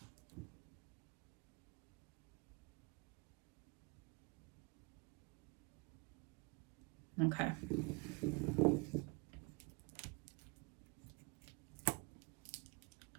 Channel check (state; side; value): quieter; left; 27.5 dB